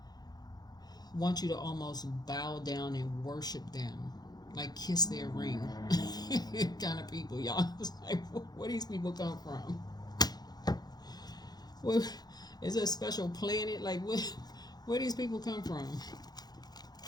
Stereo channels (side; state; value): right; late; 0.19 ms